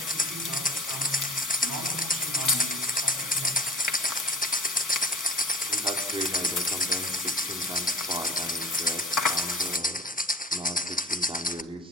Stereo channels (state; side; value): normal; both; correlation 0.42